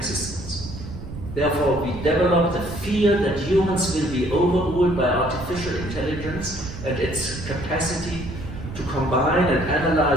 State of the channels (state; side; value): noise; right; rumble, 11 dB below the sound